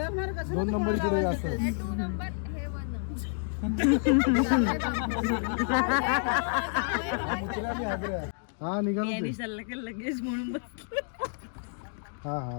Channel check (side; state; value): right; silent; digital silence